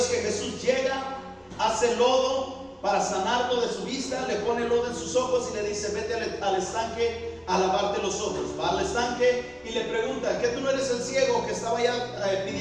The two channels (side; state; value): both; identical; correlation 1.00